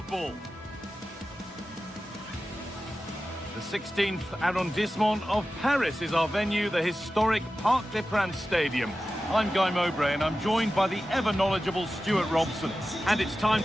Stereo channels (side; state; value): both; normal; correlation 0.94